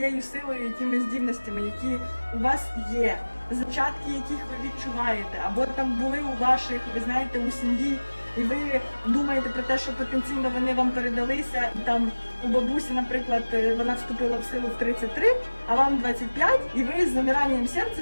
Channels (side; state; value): both; inverted; correlation -1.00